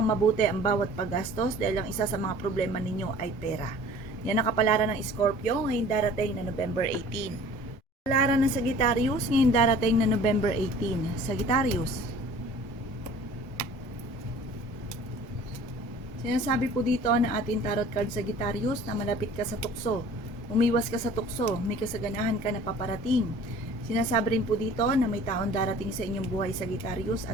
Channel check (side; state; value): both; normal; correlation 0.48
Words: mabuti ang bawat paggastos dahil ang isa sa mga problema ninyo ay pera. Yan ang kapalaran ng Scorpio ngayong darating na November 18. Kapalaran ng Sagittarius ngayong darating na November 18. Sagittarius. Sinasabi po dito na ating tarot card Sagittarius na malapit ka sa tukso. Umiwas ka sa tukso, may kasaganahan ka na paparating. Sinasabi rin po dito na may taon darating sa inyong buhay Sagittarius